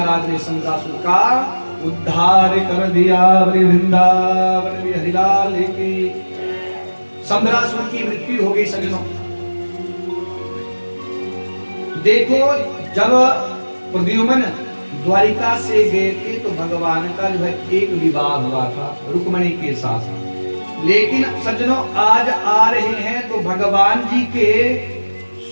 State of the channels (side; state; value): both; inverted; correlation -1.00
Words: ने सम्रासुर का उद्धार कर दिया। वृंदावन बिहारी लाल की। सम्रासुर की मृत्यु हो गई सज्जनों। देखो जब प्रद्युम्न द्वारिका से गए थे तो भगवान का जो है एक विवाह हुआ था रुक्मणी के साथ, लेकिन सज्जनों आज आ रहे हैं तो भगवान जी के